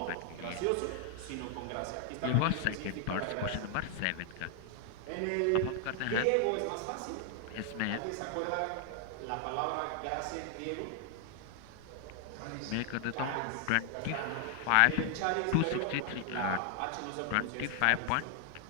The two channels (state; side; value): different; both; correlation 0.00